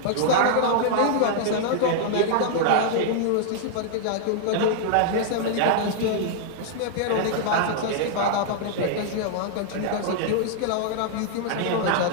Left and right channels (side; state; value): both; different; correlation -0.01